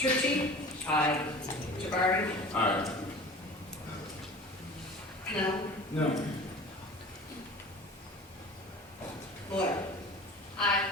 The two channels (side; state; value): both; normal; correlation 0.39